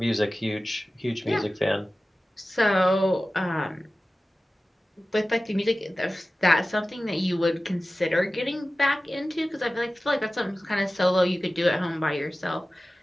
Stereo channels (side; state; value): both; normal; correlation 0.96